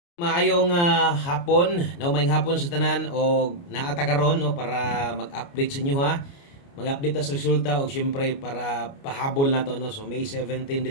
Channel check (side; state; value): right; late; 29 ms